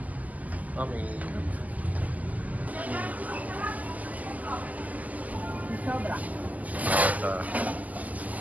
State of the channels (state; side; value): late; left; 0.078 ms